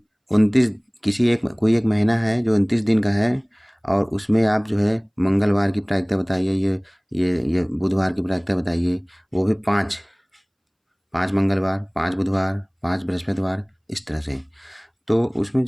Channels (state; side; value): identical; both; correlation 1.00